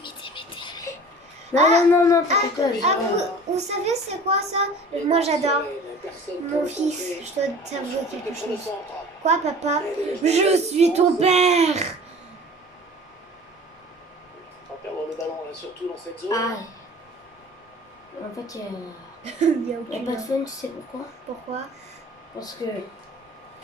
Non, t'inquiète pas. Vous savez c'est quoi ça? Moi j'adore. Mon fils, je dois t'avouer quelque chose. Quoi papa? Je suis ton père. le ballon, là, surtout dans cette zone. Ah. En fait, Il y a il n'y a aucune. pas de fun, tu sais pourquoi? Pourquoi? Parce que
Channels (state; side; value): normal; both; correlation 0.43